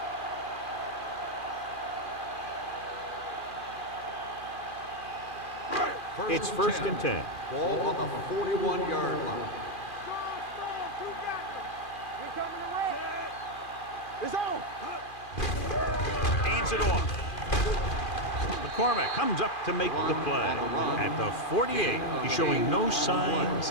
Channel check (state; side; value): late; right; 2.4 ms